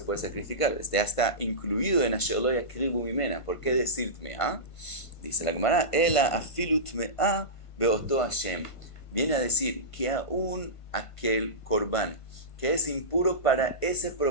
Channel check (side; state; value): right; late; 1.5 ms